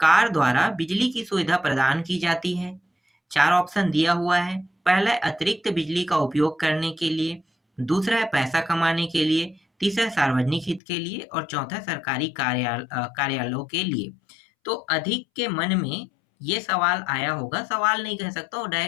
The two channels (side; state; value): right; drops out; at 10.8 s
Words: द्वारा बिजली की सुविधा प्रदान की जाती है। चार ऑप्शन दिया हुआ है। पहला है अतिरिक्त बिजली का उपयोग करने के लिए, दूसरा है पैसा कमाने के लिए, तीसरा सार्वजनिक हित के लिए और चौथा सरकारी कार्यालयों के लिए। तो अधिक के मन में ये सवाल आया होगा, सवाल नहीं कह सकता और